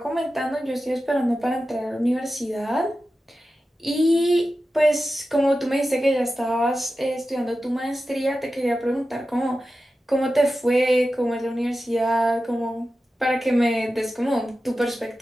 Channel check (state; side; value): normal; both; correlation 0.93